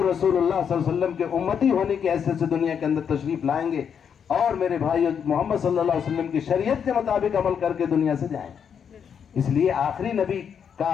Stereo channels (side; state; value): right; quieter; 7.5 dB